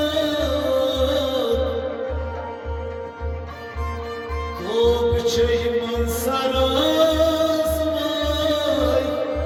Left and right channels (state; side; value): identical; both; correlation 1.00